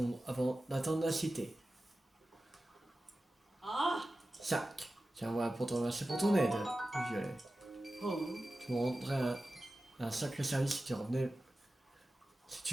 avant d'atteindre la cité. 5. Tiens, voilà pour te remercier pour ton aide, Violet. Tu me rendrais un sacré service si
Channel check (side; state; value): both; normal; correlation 0.94